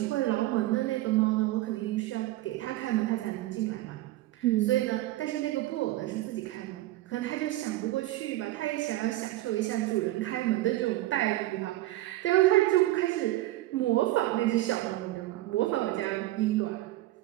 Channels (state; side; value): quieter; left; 16.6 dB